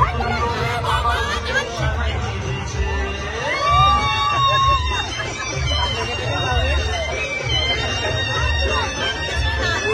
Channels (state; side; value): identical; both; correlation 1.00